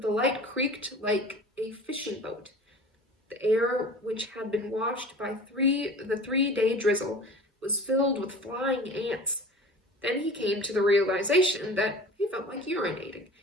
the light creaked like a fishing boat. The air, which had been washed by the 3-day drizzle, was filled with flying ants. Then he came to the realization that he felt like urinating,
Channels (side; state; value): both; normal; correlation 0.41